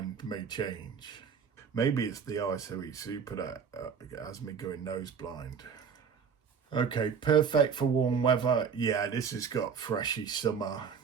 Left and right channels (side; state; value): left; quieter; 6.5 dB